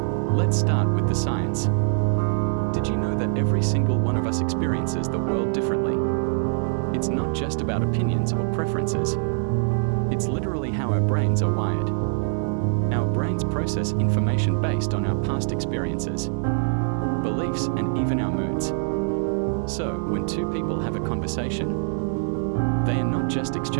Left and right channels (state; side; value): silent; left; 62 dB below the other